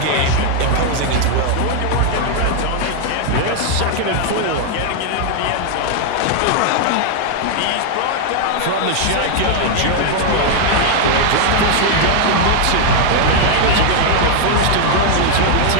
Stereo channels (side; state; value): both; different; correlation 0.00